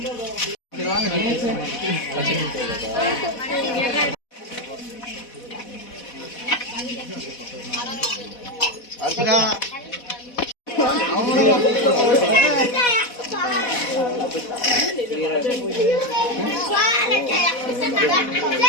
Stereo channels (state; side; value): late; right; 4.1 ms